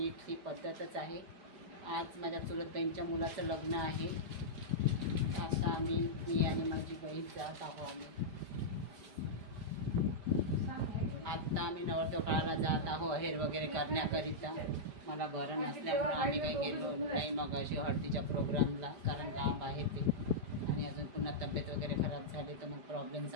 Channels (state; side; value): late; left; 5.0 ms